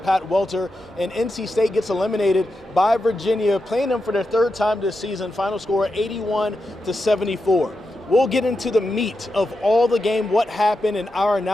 Pat Welter, and NC State gets eliminated by Virginia, playing them for their third time this season. Final score 81-74. We'll get into the meat of all the game, what happened, and our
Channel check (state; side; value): normal; both; correlation 0.88